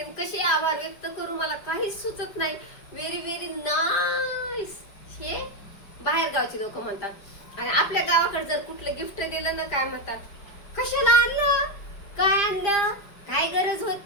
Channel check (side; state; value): right; late; 5.0 ms